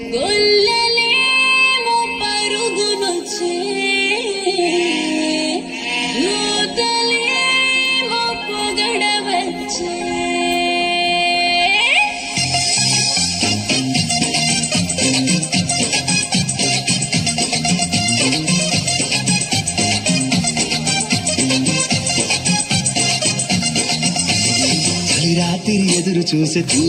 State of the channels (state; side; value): identical; both; correlation 1.00